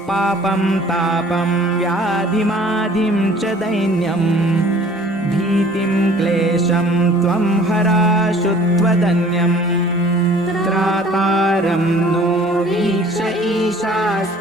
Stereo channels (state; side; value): normal; both; correlation 0.51